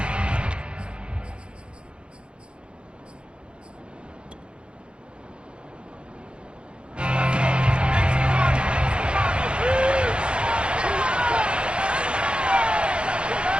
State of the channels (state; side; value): late; left; 0.057 ms